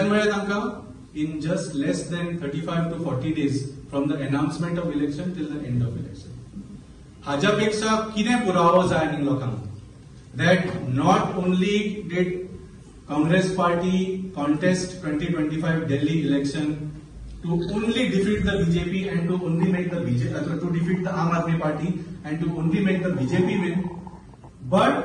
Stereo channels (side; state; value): both; identical; correlation 1.00